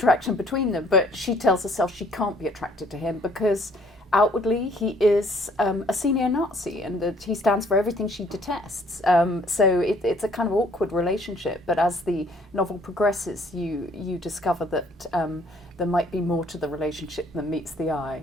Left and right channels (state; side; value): normal; both; correlation 0.60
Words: between them. But she tells herself she can't be attracted to him because outwardly he is a senior Nazi, and that he stands for everything she detests. So it's a kind of awkward relationship. But as the novel progresses, you discover that there might be more to the relationship than meets the eye,